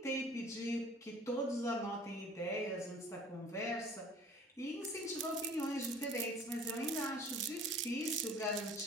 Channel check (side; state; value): both; normal; correlation 0.50